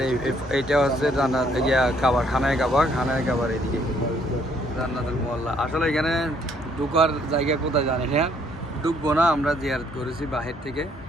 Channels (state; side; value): normal; both; correlation 0.66